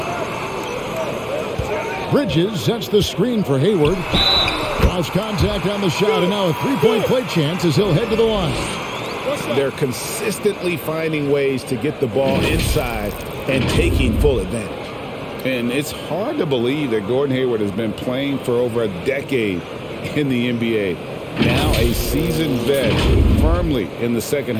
Bridges sets the screen for Hayward. Lost contact on the shot, and now a 3-point play chance as he'll head to the line. They're consistently finding ways to get the ball inside and taking full advantage. And it's hard to believe that Gordon Hayward has been playing for over a decade in the NBA. Now a seasoned vet, firmly in the second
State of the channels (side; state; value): both; identical; correlation 1.00